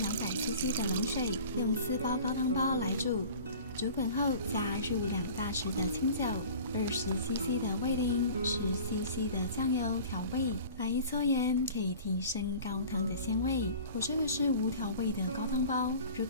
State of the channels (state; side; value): inverted; both; correlation -0.42